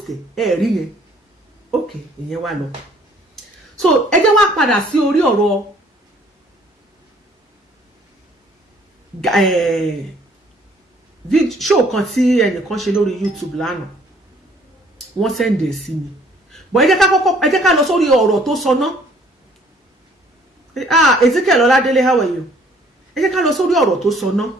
ẹ̀ rí yẹn ok ìyẹn wà lọ so ẹ jẹ́ wá padà sí orí ọ̀rọ̀ show kan tí ẹnìkan ṣe lórí YouTube lánàá wọ́n send ẹ̀ sí mi but ẹ jẹ́ ká lọ sórí ọ̀rọ̀ tó sọ náà Ezekiel Ọládélé how are you ẹ jẹ́ ká lọ sórí ọ̀rọ̀ tó sọ náà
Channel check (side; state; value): both; normal; correlation 0.59